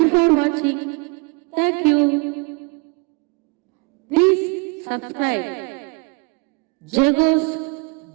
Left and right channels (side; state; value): left; quieter; 31.2 dB